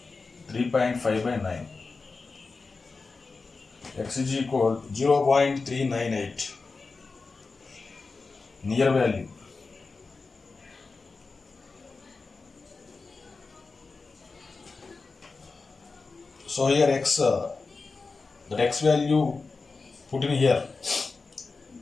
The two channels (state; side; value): quieter; right; 4.1 dB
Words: to 3.5 by 9. X is equal to 0.398. Near value. So here x, that x value put in here,